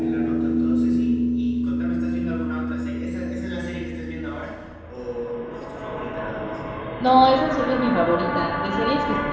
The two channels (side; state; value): both; identical; correlation 1.00